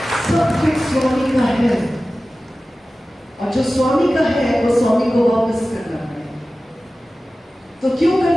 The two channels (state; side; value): normal; both; correlation 0.96